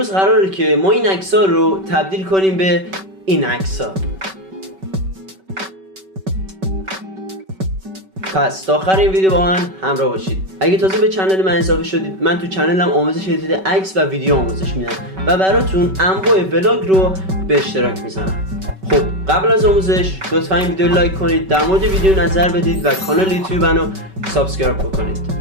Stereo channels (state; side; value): late; left; 5.3 ms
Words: قراره که ما این عکس‌ها رو تبدیل کنیم به این عکس‌ها. پس تا آخر این ویدیو با من همراه باشید. اگه تازه به کانال من اضافه شدید، من تو کانالم آموزش ادیت عکس و ویدیو آموزش میدم و براتون انواع ولاگ رو به اشتراک میذارم. خب قبل از آموزش لطفا این ویدیو لایک کنید، در مورد ویدیو نظر بدید و کانال یوتیوب منو سابسکرایب بکنید.